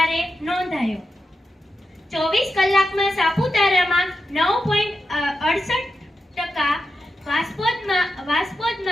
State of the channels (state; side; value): normal; both; correlation 0.88